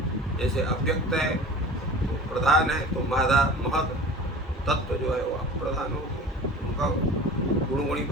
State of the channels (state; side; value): normal; both; correlation 0.39